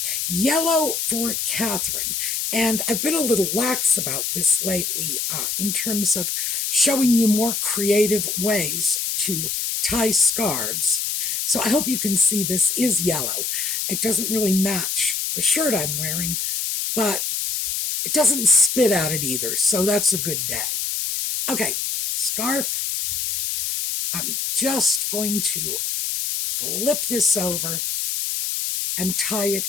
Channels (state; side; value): noise; left; hiss, 1 dB below the sound